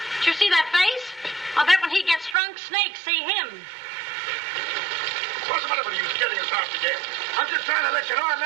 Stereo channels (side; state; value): left; drops out; at 2.4 s